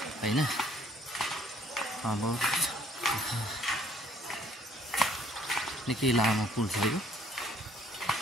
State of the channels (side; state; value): both; normal; correlation 0.62